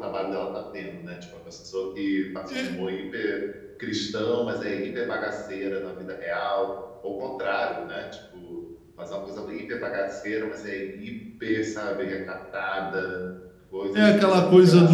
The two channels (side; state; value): both; identical; correlation 1.00